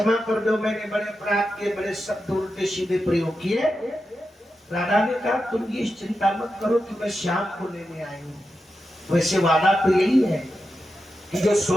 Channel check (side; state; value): both; normal; correlation 0.89